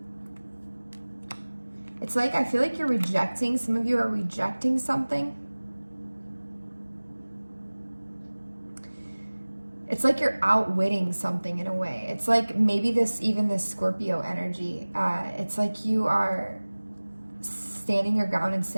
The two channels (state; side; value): inverted; both; correlation -1.00